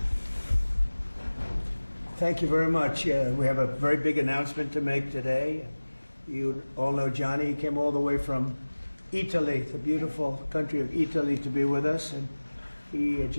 Thank you very much. We have a very big announcement to make today. You all know Johnny. He came all the way from Italy, the beautiful country of Italy, to be with us. And he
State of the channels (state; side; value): inverted; both; correlation -1.00